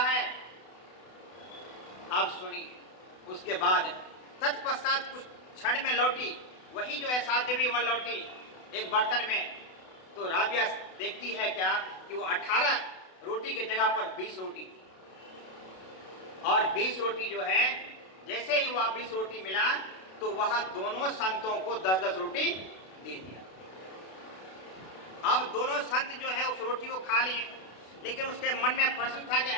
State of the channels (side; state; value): right; late; 32 ms